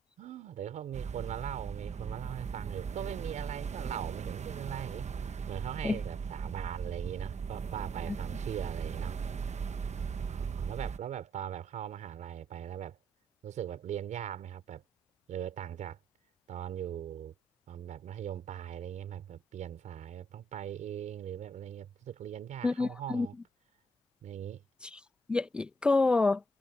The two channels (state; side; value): normal; both; correlation 0.72